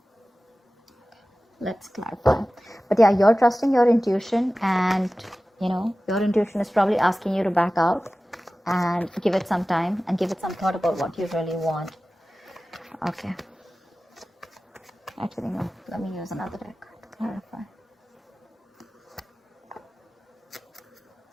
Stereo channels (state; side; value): normal; both; correlation 0.96